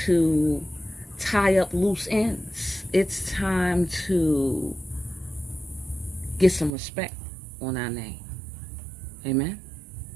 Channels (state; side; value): drops out; left; at 6.8 s